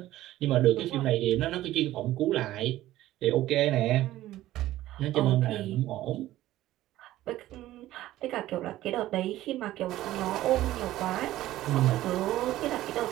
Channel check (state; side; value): quieter; left; 15.0 dB